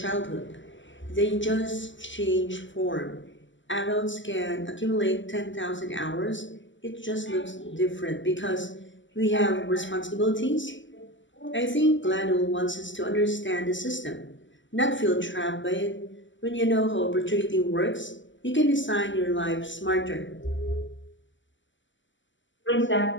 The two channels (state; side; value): late; right; 0.54 ms